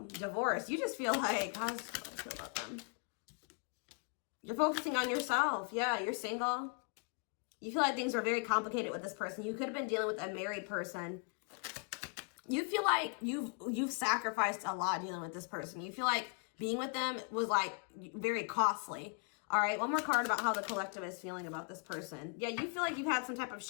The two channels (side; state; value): right; quieter; 38.2 dB